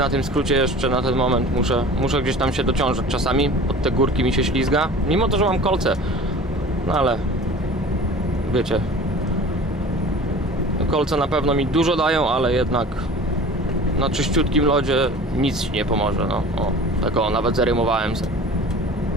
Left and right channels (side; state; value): both; normal; correlation 0.41